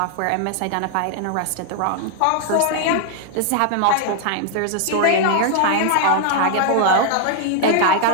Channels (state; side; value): different; both; correlation 0.00